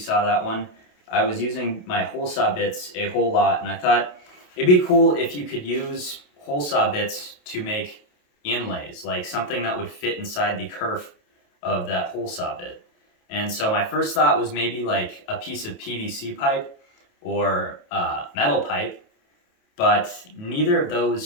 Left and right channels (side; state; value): right; late; 28 ms